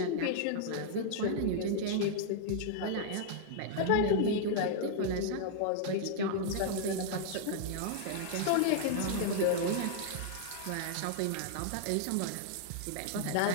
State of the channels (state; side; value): different; both; correlation -0.01